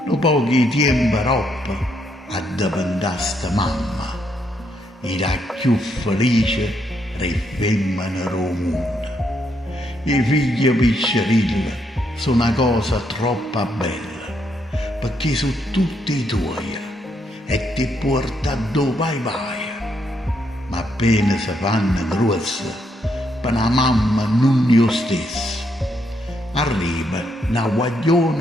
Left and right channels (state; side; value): normal; both; correlation 0.76